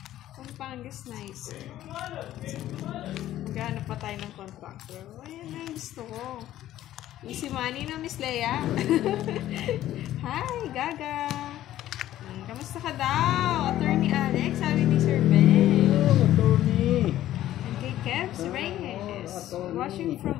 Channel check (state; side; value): quieter; right; 13.4 dB